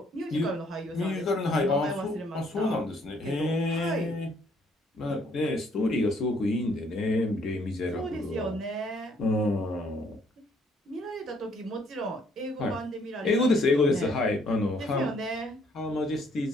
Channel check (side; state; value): both; normal; correlation 0.66